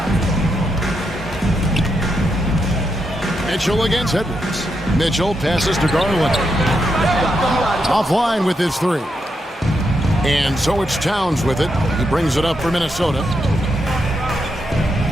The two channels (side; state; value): both; normal; correlation 0.82